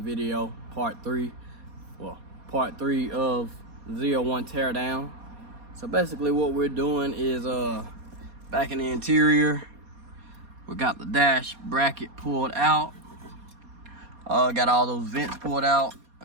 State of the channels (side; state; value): left; late; 4.2 ms